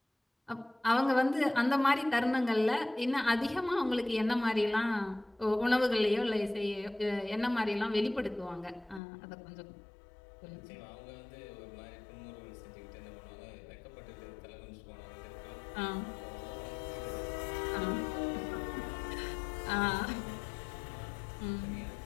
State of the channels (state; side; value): drops out; right; at 9.0 s